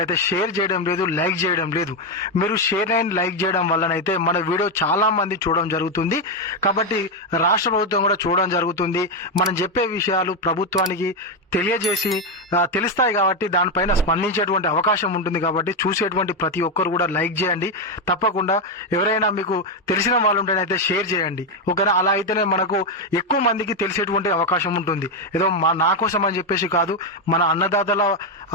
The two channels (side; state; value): both; normal; correlation 0.06